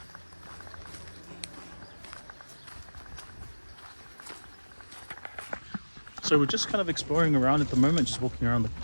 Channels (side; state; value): both; inverted; correlation -1.00